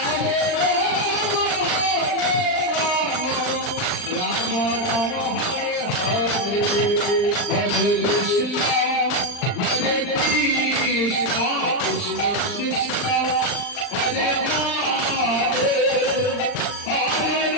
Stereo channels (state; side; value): late; right; 39 ms